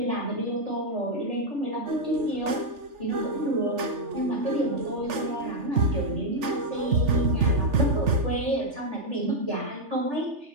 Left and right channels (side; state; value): left; late; 3.4 ms